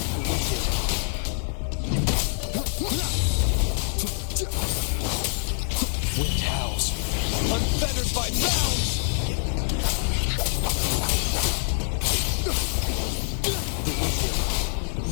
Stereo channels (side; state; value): right; silent; digital silence